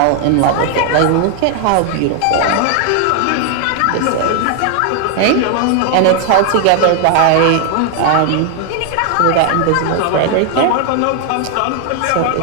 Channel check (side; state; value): both; different; correlation 0.00